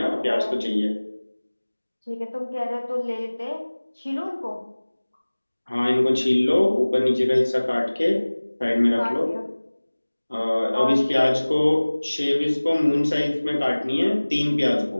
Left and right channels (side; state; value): both; inverted; correlation -1.00